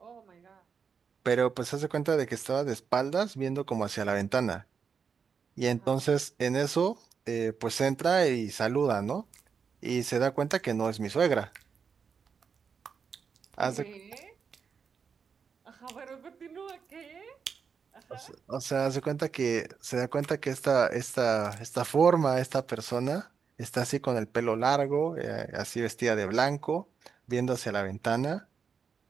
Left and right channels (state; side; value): quieter; left; 6.2 dB